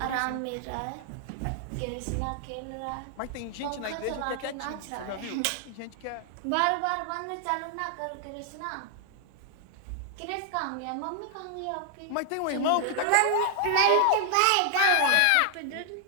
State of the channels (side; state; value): both; different; correlation 0.00